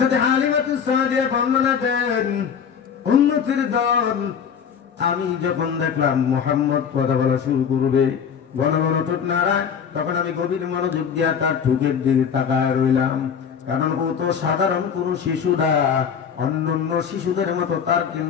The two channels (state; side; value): quieter; right; 7.3 dB